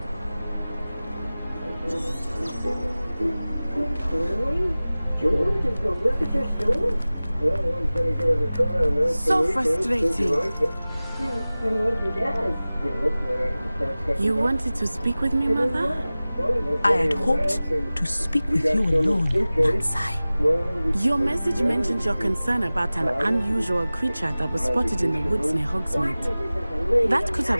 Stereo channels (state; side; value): inverted; both; correlation -0.98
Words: Really? George is going to work at your store? Well, one's going to give it a try on that. So frustrating. You wanted to speak with me, Mother? I had hoped to speak with you alone, Natsai. Your message mentioned your concern about an unusual creature that was spotted in the woods near Hogsmeade. That could